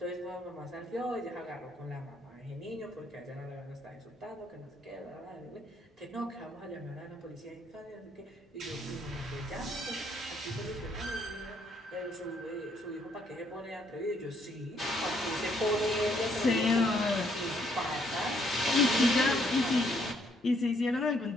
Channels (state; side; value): normal; both; correlation 0.69